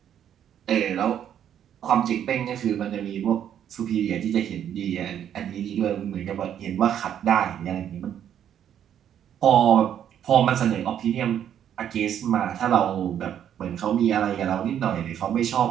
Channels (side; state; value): left; quieter; 9.7 dB